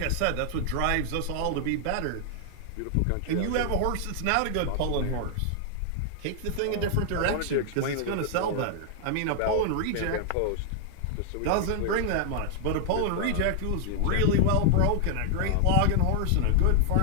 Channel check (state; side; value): different; both; correlation 0.00